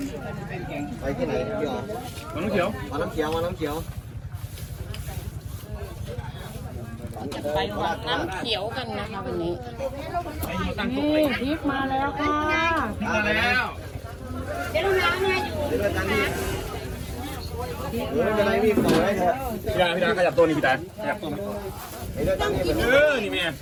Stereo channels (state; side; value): identical; both; correlation 1.00